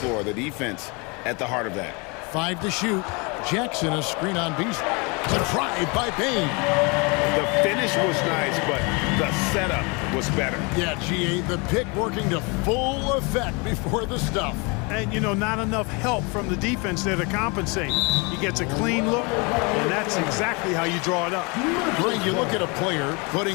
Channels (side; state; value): right; quieter; 30.0 dB